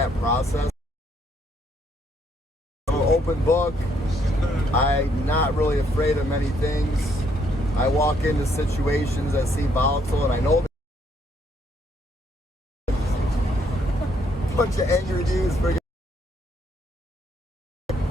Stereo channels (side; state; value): both; normal; correlation 0.70